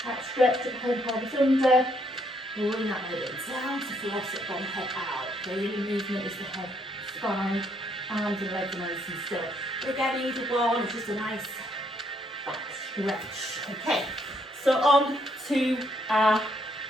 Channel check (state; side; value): normal; both; correlation 0.72